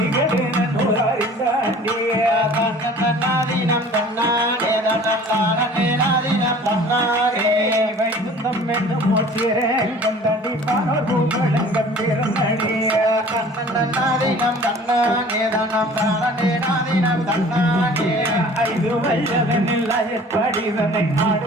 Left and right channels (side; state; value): both; normal; correlation 0.47